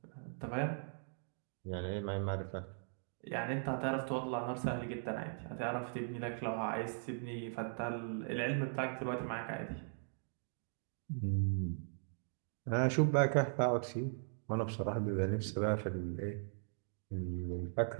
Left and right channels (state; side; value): silent; left; digital silence